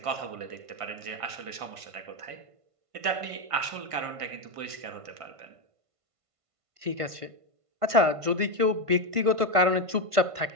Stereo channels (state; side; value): late; left; 1.5 ms